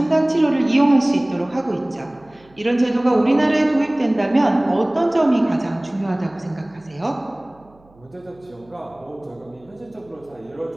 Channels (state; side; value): noise; right; hum, 29 dB below the sound